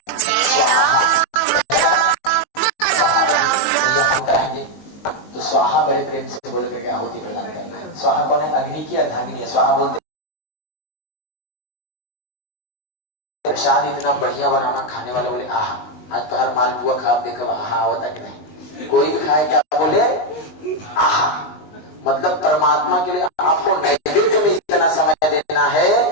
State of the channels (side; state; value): right; late; 19 ms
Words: तो स्वाहा बड़े प्रेम से बोल करके आहुति प्रदान करना है। स्वाहा कौन है? अग्नि की अर्धांगिनी है। स्वाहा बोलते प्रसाद इतना बढ़िया बनाना, खाने वाले बोले आहा आज तो हर मालपुआ खा, आप देखो आहा आवता कि नहीं। कोई भी खाए क्या बोले आहा, मतलब परमात्मा के लिए आपको नैवेद्य में इतना समय देना है